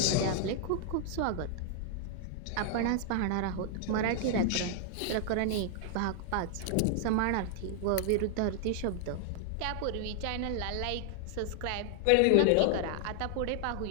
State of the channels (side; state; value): both; different; correlation 0.00